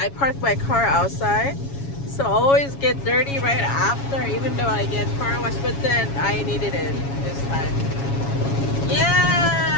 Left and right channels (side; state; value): right; late; 7.2 ms